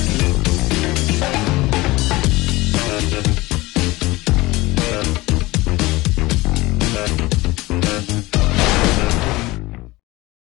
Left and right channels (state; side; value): quieter; right; 20.5 dB